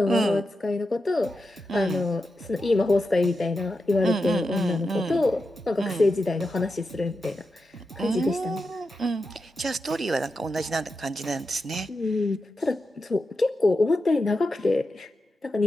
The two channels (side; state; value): both; normal; correlation 0.89